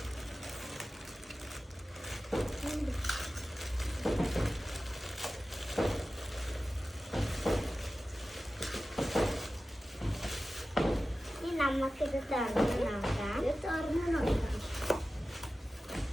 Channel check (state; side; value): normal; both; correlation 0.94